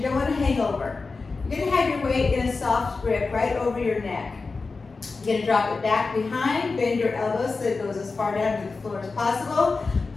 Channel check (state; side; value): quieter; right; 4.1 dB